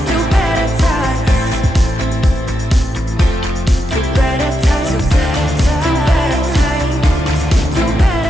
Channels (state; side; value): normal; both; correlation 0.84